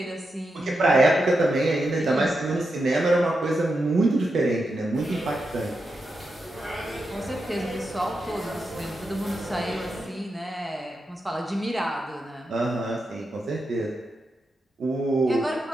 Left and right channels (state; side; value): normal; both; correlation 0.87